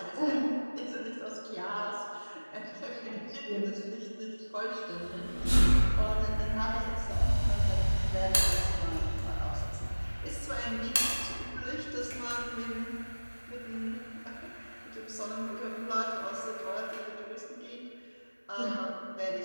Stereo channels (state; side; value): inverted; both; correlation -1.00